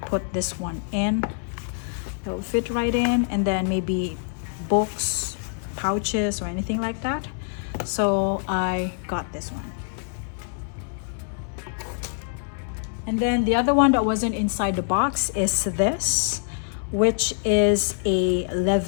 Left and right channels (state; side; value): silent; right; 62 dB below the other